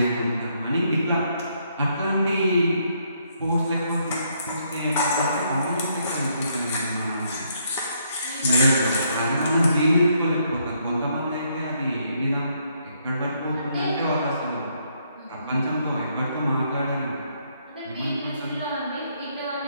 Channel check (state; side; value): inverted; both; correlation -0.72